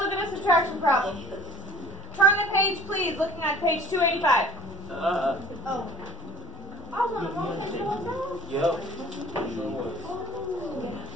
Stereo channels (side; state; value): both; normal; correlation 0.49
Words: at a subtraction problem. Turn the page, please, looking at page 285. Yep.